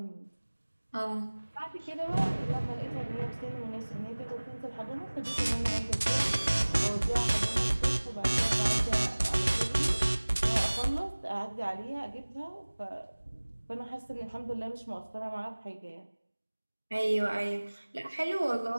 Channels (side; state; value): both; inverted; correlation -1.00